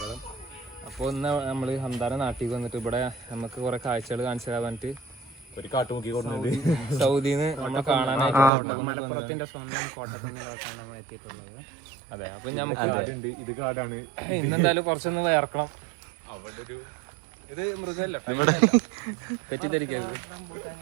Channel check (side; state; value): left; drops out; at 8.5 s